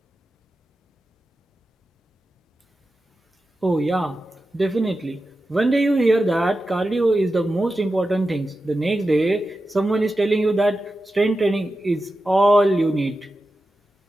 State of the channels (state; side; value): normal; both; correlation 0.92